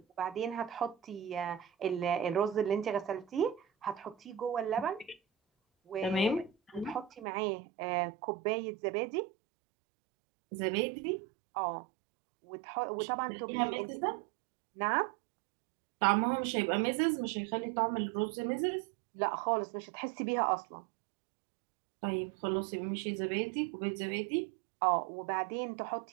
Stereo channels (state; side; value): drops out; left; at 7.2 s